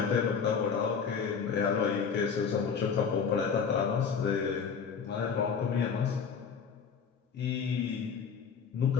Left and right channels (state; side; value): quieter; right; 6.4 dB